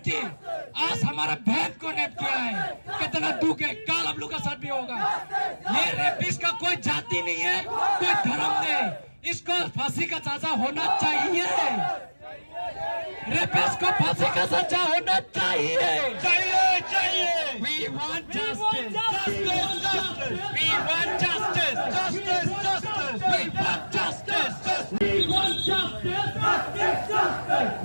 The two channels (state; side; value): inverted; both; correlation -1.00